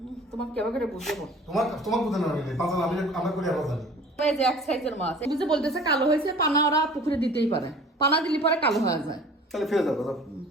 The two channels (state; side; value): normal; both; correlation 0.46